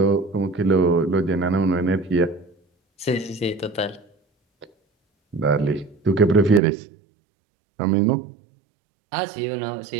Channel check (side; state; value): left; drops out; at 6.6 s